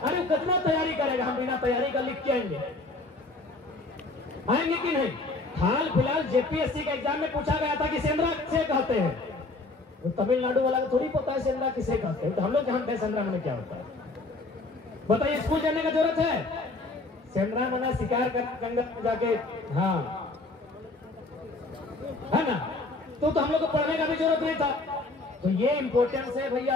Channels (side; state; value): right; quieter; 3.2 dB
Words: वो कितना तैयारी करेगा, हम बिना तैयारी का लिख के आएंगे कि नहीं? हाल फिलहाल जेपीएससी के एग्जाम में पूछा गया था कि सेंद्रा किसे कहते हैं, वो तमिलनाडु वाला को थोड़ी पता है सेंद्रा किसे कहते हैं, तो हम लोग जानते हैं सेंद्रा मैंने क्या होता है। बताइए स्कूल जाने का जरूरत है? सेंद्रा मना शिकार कर जंगल में जाके, हाँ है ना, तो हम लोग को पढ़ने का भी जरूरत नहीं था। तो ये इंपॉर्टेंस है